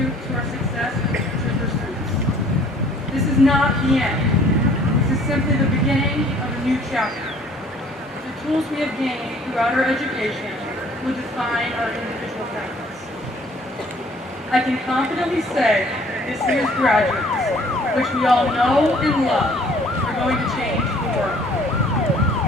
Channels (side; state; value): both; normal; correlation 0.56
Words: to our success in future pursuits. This is not the end. This is simply the beginning of a new chapter. The tools we have gained throughout our education will define our individual talents. I can confidently say this year's graduates, which we all know and love, are going to change the world.